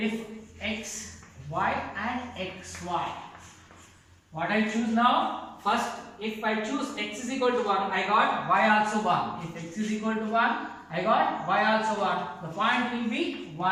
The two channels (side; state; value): both; identical; correlation 1.00